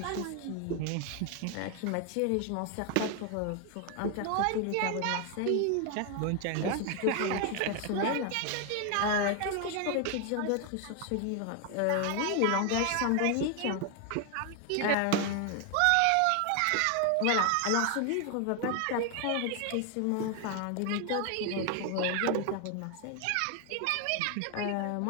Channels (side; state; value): both; different; correlation 0.01